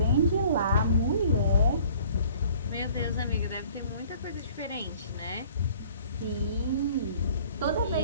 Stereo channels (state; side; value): inverted; both; correlation -0.52